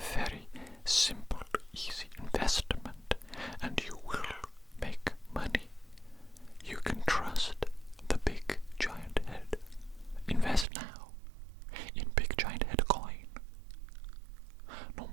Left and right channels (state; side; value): drops out; left; at 10.7 s